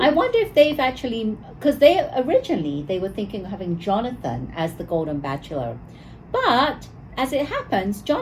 I wonder if they've actually, because they were thinking of having Jonathan as the Golden Bachelor. But as it happens,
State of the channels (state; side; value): identical; both; correlation 1.00